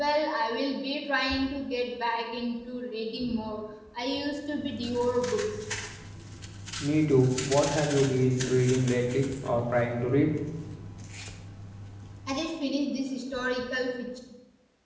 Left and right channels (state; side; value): identical; both; correlation 1.00